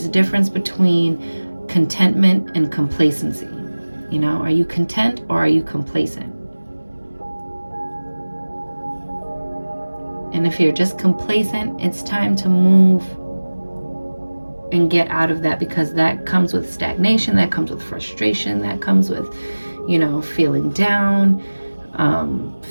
a difference between contentment and complacency. You know, are you content or are you complacent? And if you're just complacent, it's time to move and get out of that, because that comes with stagnation, that comes with frustration, that comes with, you know, feeling down,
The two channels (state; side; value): inverted; both; correlation -1.00